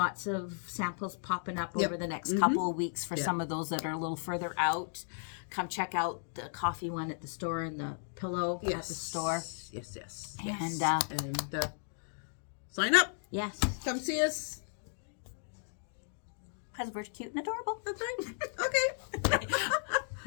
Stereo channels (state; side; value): silent; right; digital silence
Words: of samples popping up Yep. over the next couple of weeks for some of those that are a little further out. Come check out the coffee one at the store and the pillow at the store. Yes. And sign up. yes, Come see us. because we're cute and adorable. That's right. Okay.